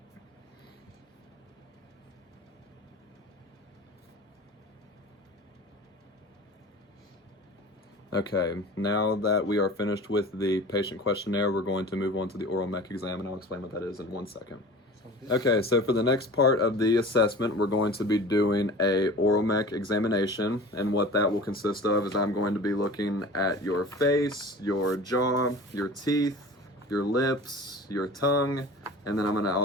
Okay, now that we are finished with the patient questionnaire, we're going to move on to the oral mech exam, and I'll explain what that is in 1 second. Sounds good. Okay, so for the next part of the assessment, we're going to be doing a oral mech examination, and what that will consist of is I'm going to be looking at your face, your jaw, your teeth, your lips, your tongue, and then I'm going to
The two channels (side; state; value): both; normal; correlation 0.39